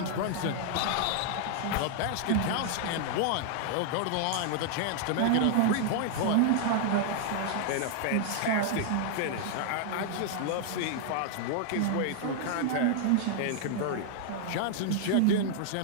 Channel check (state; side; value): different; both; correlation 0.00